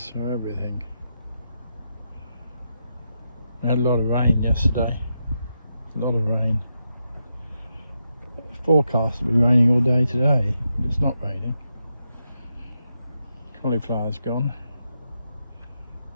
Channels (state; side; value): inverted; both; correlation -0.84